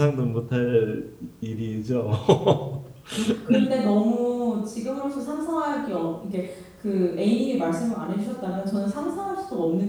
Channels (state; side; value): identical; both; correlation 1.00